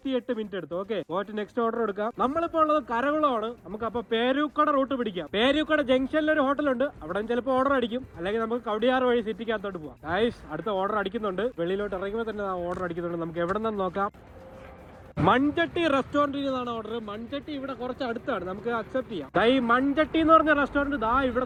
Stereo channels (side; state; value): both; identical; correlation 1.00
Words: മിനിറ്റ് എടുത്തു. ഓക്കെ, പോയിട്ട് നെക്സ്റ്റ് ഓർഡർ എടുക്കാം. നമ്മളിപ്പോൾ ഉള്ളത് കരകുളമാണ്. നമുക്ക് അപ്പൊ പേരൂക്കട റൂട്ട് പിടിക്കാം. പേരൂക്കട ജംഗ്ഷനിൽ ഒരു ഹോട്ടലുണ്ട്. അവിടെ ചിലപ്പോൾ ഓർഡർ അടിക്കും. അല്ലെങ്കിൽ നമുക്ക് കവടിയാർ വഴി സിറ്റിക്കകത്തോട്ട് പോവാം. ഗൈസ്, അടുത്ത ഓർഡർ അടിക്കുന്നുണ്ട്. വെളിയിലോട്ട് ഇറങ്ങുമ്പോൾ തന്നെ ഓർഡർ അടിക്കുന്നുണ്ട്. നമുക്ക് എവിടെ നിന്ന് നോക്കാം. മൺചട്ടി റെസ്റ്റോറന്റിൽ നിന്നാണ് ഓർഡർ. മൺചട്ടി ഇവിടെ കുറച്ച് അടുത്താണ്. നമുക്ക് അക്സെപ്റ്റ് ചെയ്യാം. ഈ മൺചട്ടി എന്ന് പറഞ്ഞ റെസ്റ്റോറന്റ്